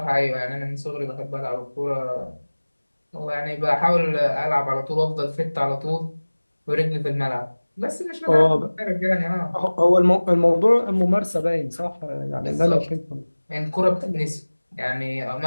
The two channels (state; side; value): inverted; both; correlation -1.00